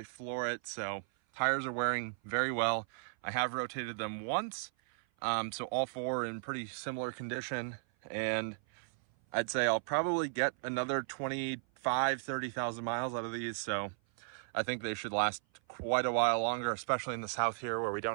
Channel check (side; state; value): left; silent; 54 dB below the other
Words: floor it, so tires are wearing very well. I have rotated them once, so all four are in pretty similar condition. And I'd say I'll probably get another 30,000 miles out of these, so I think they should last quite a while longer, especially in the south here where we